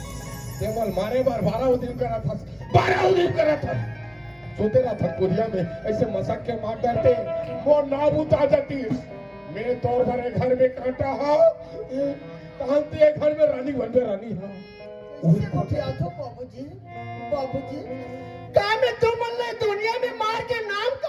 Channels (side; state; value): both; identical; correlation 1.00